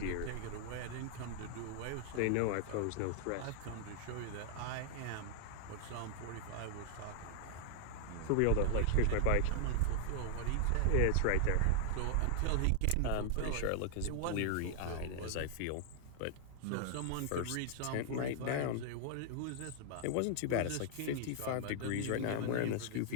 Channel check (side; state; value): both; different; correlation -0.01